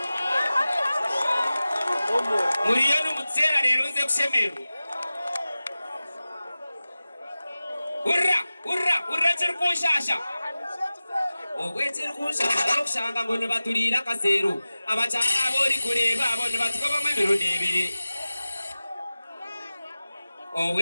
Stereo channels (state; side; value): inverted; both; correlation -0.96